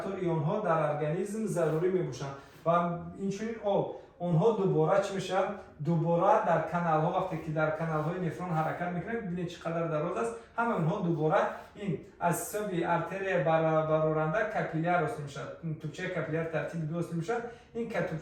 ایون ها در ارگانیسم ضروری میباشند و اینچنین آب اونها دوباره چی میشن؟ دوباره در کانال ها وقتی که در کانال های نفرون حرکت میکنه ببینید چقدر دراز است، همه اونها دوباره این از سوی ارتری برآورنده کپیلار وصل میشد، توچه کپیلار ترتیب دو وصل میشد. این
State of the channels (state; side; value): identical; both; correlation 1.00